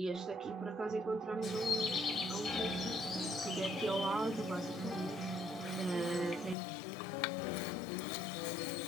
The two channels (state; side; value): drops out; right; at 6.6 s